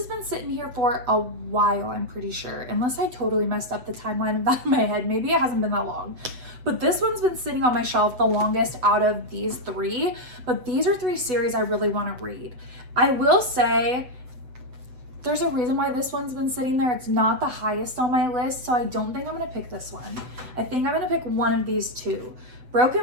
been sitting here for a while, I'm pretty sure, unless I totally messed up the timeline of that in my head. Maybe it hasn't been that long. But this one's been sitting on my shelf the longest out of these 3. But these are 3 series I really want to read. I will say there's a reason why this one's been sitting there. It's not the highest on my list, so I don't think I'm going to pick this one. I think I'm going to pick one of these 2.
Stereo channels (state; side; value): late; left; 7.9 ms